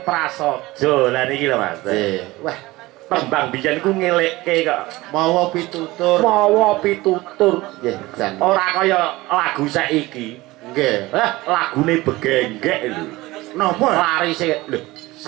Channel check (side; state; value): left; quieter; 19.8 dB